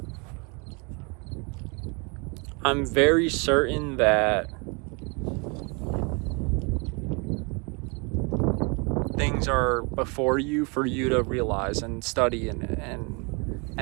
I'm very certain that things are before you for you to realize and study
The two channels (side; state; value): left; quieter; 31.8 dB